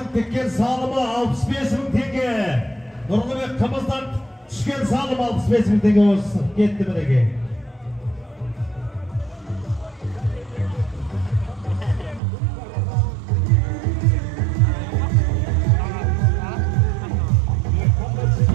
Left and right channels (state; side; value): drops out; left; at 12.2 s